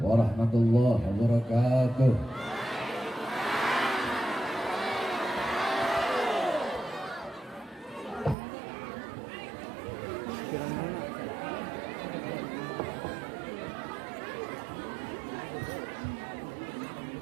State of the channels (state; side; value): drops out; left; at 8.3 s